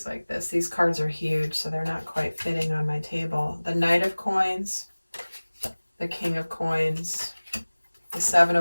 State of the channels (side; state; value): both; inverted; correlation -1.00